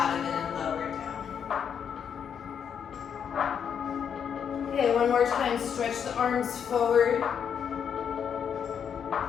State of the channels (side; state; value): right; quieter; 7.7 dB